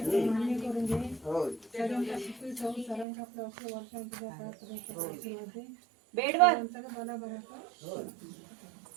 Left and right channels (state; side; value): drops out; left; at 3.1 s